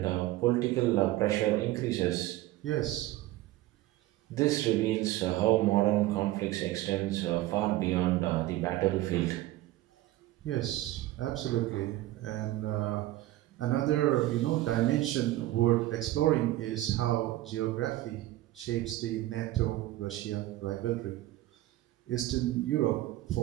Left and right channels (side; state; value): left; quieter; 16.1 dB